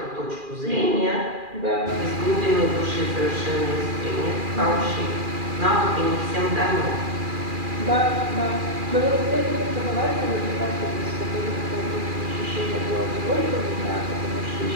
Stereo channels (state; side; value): late; left; 2.4 ms